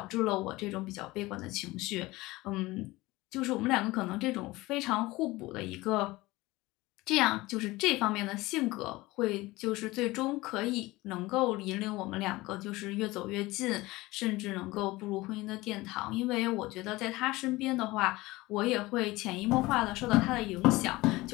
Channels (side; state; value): right; quieter; 20.2 dB